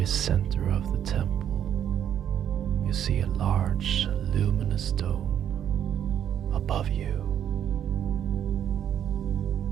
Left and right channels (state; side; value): quieter; left; 9.7 dB